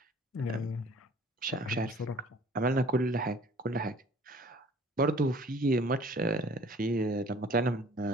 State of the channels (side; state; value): both; normal; correlation 0.51